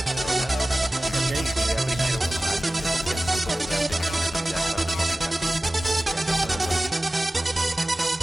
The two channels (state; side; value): normal; both; correlation 0.97